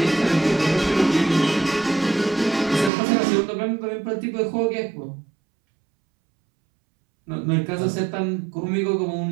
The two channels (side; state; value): left; drops out; at 2.9 s